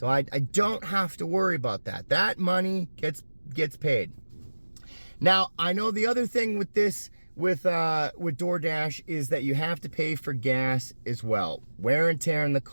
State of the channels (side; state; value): both; inverted; correlation -1.00